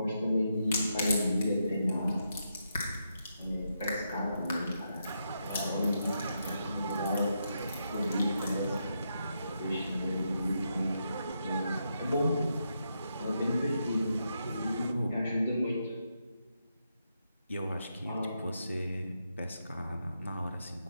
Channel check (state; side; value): inverted; both; correlation -0.82